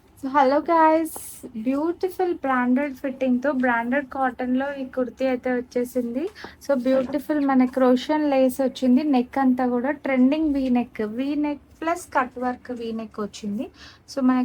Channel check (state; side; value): identical; both; correlation 1.00